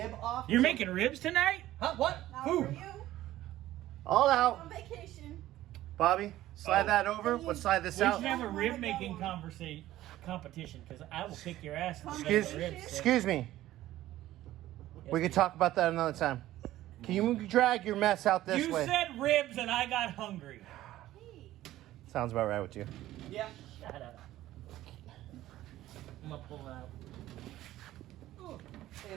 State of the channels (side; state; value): left; quieter; 14.7 dB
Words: off. You're making ribs tonight? Huh? What? Not Who? for you. All out. On vacation. Bobby, slide that over. Let's slide this We out. should have a I rib wanna making go on. competition because I will kick your ass. if you make Excuse, the ribs. excuse me. We can talk about that another time. Can you drag your mess out this You way? said ribs and I got hungry. Hey. Sounds about right with you. Yeah. Shut up. I'm gonna pull it out. Ooh.